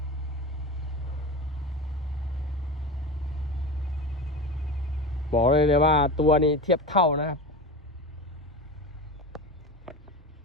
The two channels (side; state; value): both; normal; correlation 0.26